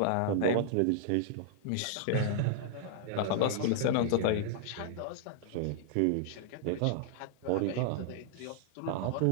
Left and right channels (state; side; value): different; both; correlation -0.01